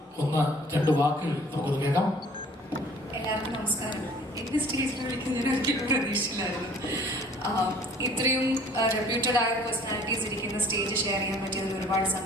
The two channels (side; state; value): both; normal; correlation 0.52